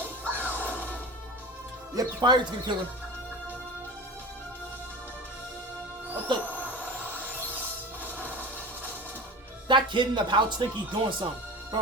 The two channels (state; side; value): normal; both; correlation 0.33